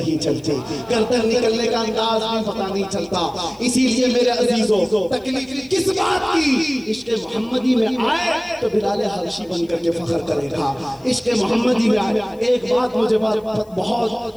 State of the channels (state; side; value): noise; left; hiss, 30 dB below the sound